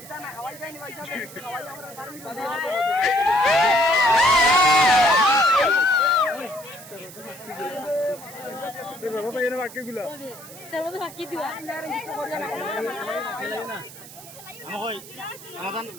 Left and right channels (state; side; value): noise; right; hiss, 17 dB below the sound